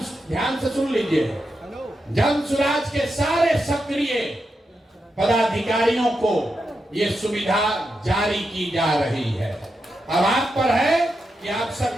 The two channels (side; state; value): both; normal; correlation 0.87